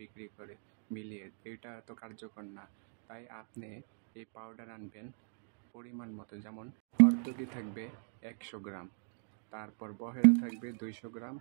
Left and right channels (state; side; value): silent; left; 53 dB below the other